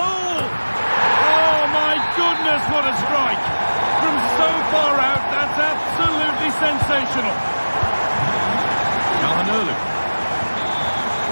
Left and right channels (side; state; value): both; inverted; correlation -1.00